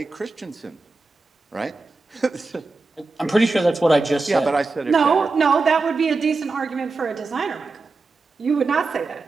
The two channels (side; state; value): left; quieter; 3.8 dB